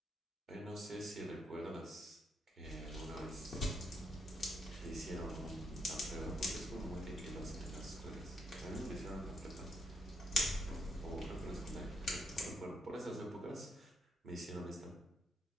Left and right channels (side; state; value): both; normal; correlation 0.77